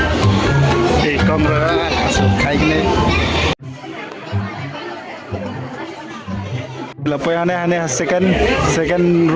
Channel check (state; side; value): identical; both; correlation 1.00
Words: Hey, camera. Kaig na. Lapo yang ne second